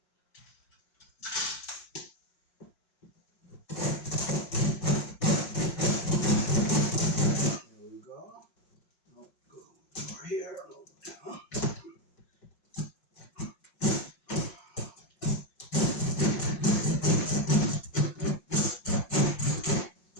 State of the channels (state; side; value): late; right; 5.5 ms